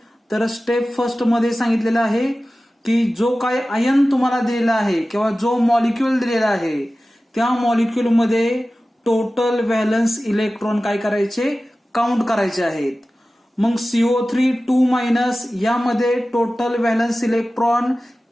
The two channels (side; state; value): both; normal; correlation 0.96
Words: तर स्टेप फर्स्ट मध्ये सांगितलेलं आहे की जो काय आयन तुम्हाला दिलेला आहे किंवा जो मॉलिक्युल दिलेला आहे त्या मॉलिक्युल मध्ये टोटल व्हॅलन्स इलेक्ट्रॉन काय करायचे, काउंट करायचे आहेत. मग CO3 यामध्ये टोटल व्हॅलन्स इलेक्ट्रॉन